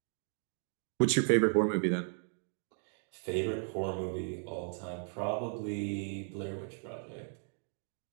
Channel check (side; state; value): left; silent; 54 dB below the other